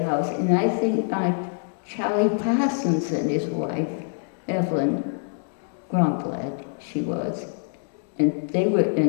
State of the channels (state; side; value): silent; right; digital silence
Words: house. And I think Charlie Parsons and his wife, Evelyn Gromblad, she was. And they were